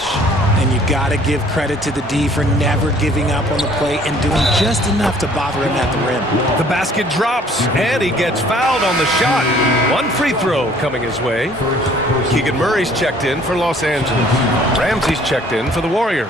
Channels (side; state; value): both; normal; correlation 0.56